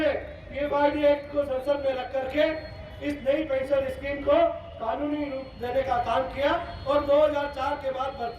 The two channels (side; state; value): both; identical; correlation 1.00